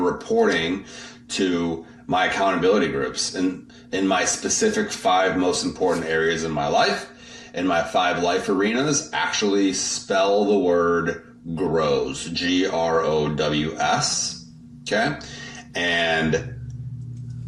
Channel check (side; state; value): both; identical; correlation 1.00